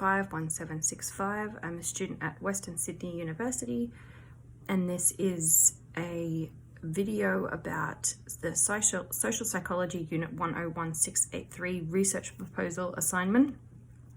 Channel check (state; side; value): identical; both; correlation 1.00